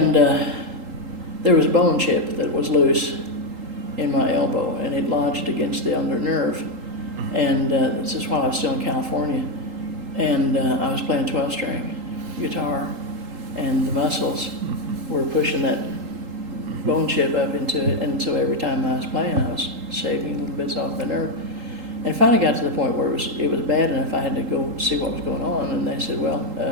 there was a bone chip that was loose in my elbow, and it lodged against the under nerve. And this is while I was still in California. And I was playing 12-string guitar, and the muscles were pushing that bone chip up into it, and so every time I was playing, I was shaving little bits off the nerve. And it finally got to the point where it was bad enough I had to go see what was going on, and they said, well,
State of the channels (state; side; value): late; left; 3.8 ms